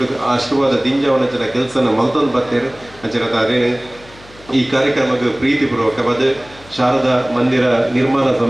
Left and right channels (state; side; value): noise; left; hum, 23 dB below the sound